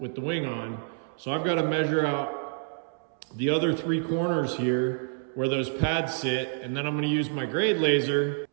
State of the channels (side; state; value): left; silent; 59 dB below the other